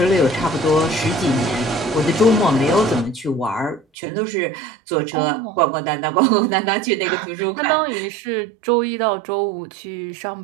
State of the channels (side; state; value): left; drops out; at 3.8 s